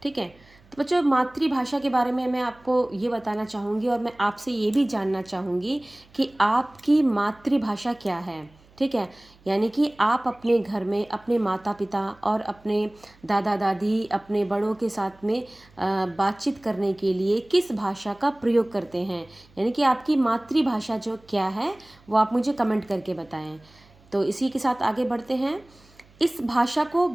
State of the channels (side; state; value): right; noise; hum, 28 dB below the sound